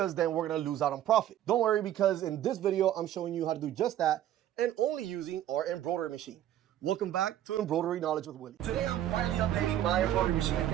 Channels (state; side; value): quieter; left; 11.9 dB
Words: then we're gonna lose out on profit. Don't worry, because in this video, I'm showing you how to do just that, and only using our embroidery machine. Welcome back to Embroidery Knowledge with Willy. Today, I'm finally updating my embroidery machine, and